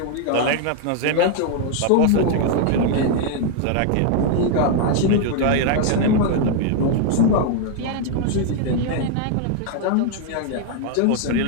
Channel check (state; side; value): different; both; correlation 0.00